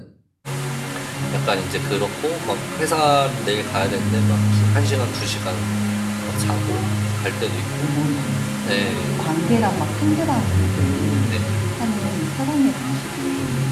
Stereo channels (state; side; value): identical; both; correlation 1.00